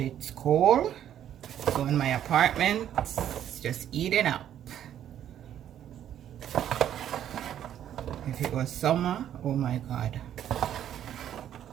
it's cold. So in my apartment, it's just eating up. If it was summer, oh my God.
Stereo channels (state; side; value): quieter; left; 10.6 dB